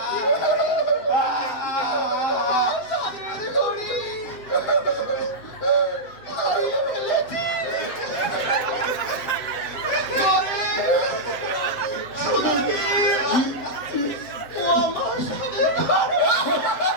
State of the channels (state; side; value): late; right; 7.6 ms